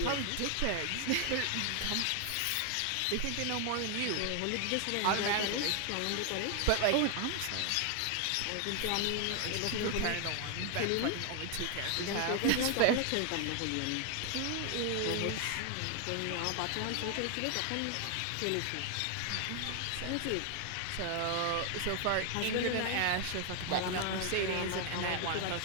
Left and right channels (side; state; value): both; different; correlation 0.00